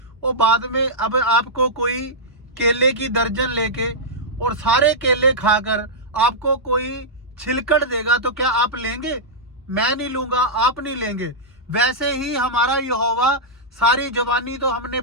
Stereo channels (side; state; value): both; normal; correlation -0.09